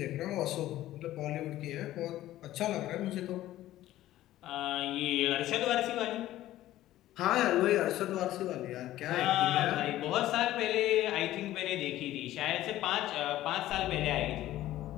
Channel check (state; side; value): quieter; right; 14.5 dB